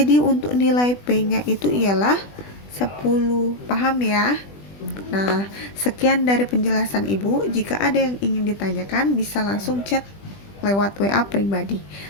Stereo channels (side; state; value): right; late; 20 ms